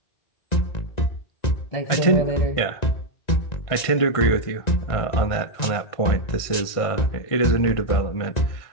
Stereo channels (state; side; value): late; right; 1.9 ms